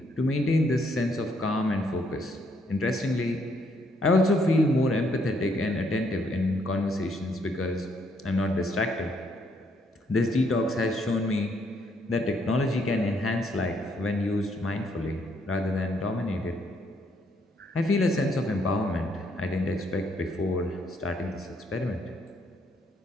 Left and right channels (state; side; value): normal; both; correlation 0.71